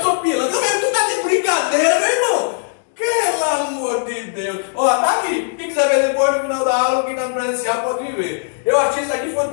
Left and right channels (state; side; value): silent; right; digital silence